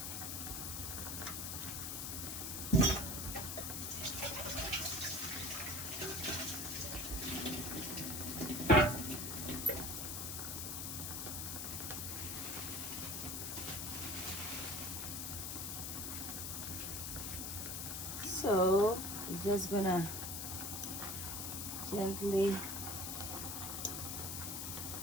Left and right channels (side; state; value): left; noise; hiss, 3 dB below the sound